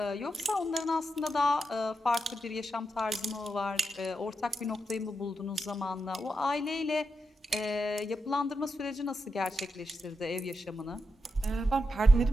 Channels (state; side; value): normal; both; correlation 0.86